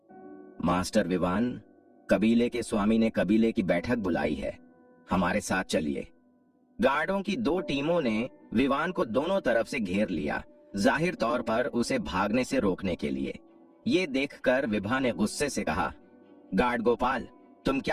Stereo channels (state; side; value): identical; both; correlation 1.00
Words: मास्टर विवान, कबीले के स्वामी ने कबीले की बैठक बुलाई है, हमारे साथ चलिए। गार्डों की 2 टीमों ने विवान को दोनों तरफ से घेर लिया, जाहिर तौर पर उसे भागने से रोकने के लिए। ये देखकर विभा ने गुस्से से कहा, गार्ड गोपाल, तुम